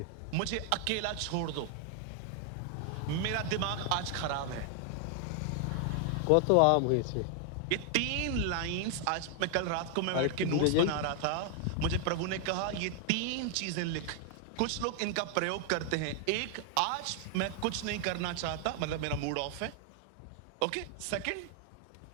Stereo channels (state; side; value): different; both; correlation 0.00